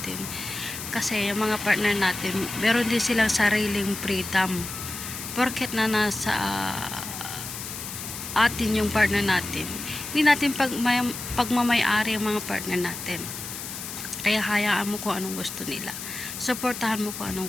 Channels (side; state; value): left; noise; hiss, 8 dB below the sound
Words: Kasi yung mga partner natin, meron din silang sariling freedom. Porket na nasa atin yung partner natin, hindi natin pagmamay-ari ang mga partner natin. Kaya hayaan mo kung anong gusto nila. Suportahan mo kung